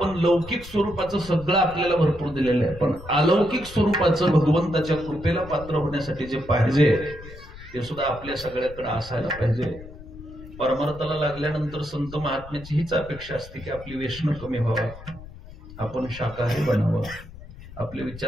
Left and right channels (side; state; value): left; noise; rumble, 16 dB below the sound